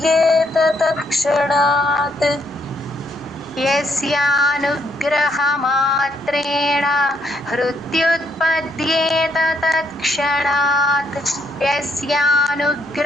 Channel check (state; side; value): noise; right; rumble, 28 dB below the sound